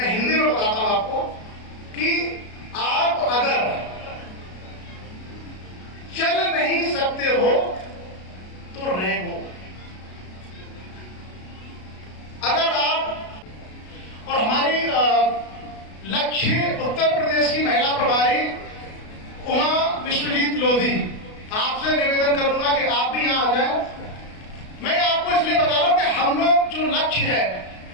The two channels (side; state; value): right; late; 33 ms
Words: हिंदी में बताता हूं आपको, कि आप अगर चल नहीं सकते हो तो रहो। अगर आप, और हमारी लक्ष्य उत्तर प्रदेश की महिला प्रभारी उमा विश्वजीत लोधी, आपसे निवेदन करूंगा कि आप भी यहां आ जाएं। मैं आपको इसलिए बता रहा हूं कि हम लोग जो लक्ष्य है,